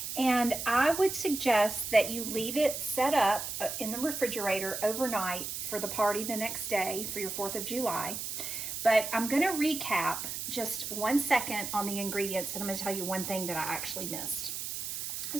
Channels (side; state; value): right; noise; hiss, 5 dB below the sound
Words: And I would suggest that you leave it set up in the refrigerator overnight for the party the next day for your 4th of July. But I'm going to recap just 1 second on the ingredients, and I'm going to tell you one thing that I actually missed.